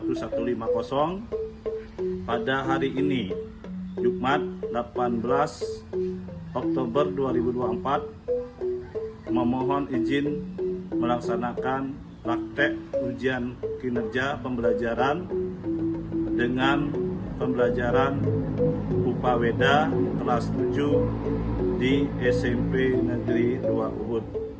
Pada hari ini, Jumat 18 Oktober 2024, memohon izin melaksanakan praktek ujian kinerja pembelajaran dengan pembelajaran Upaweda kelas 7 di SMP Negeri 2 Ubud.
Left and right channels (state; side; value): identical; both; correlation 1.00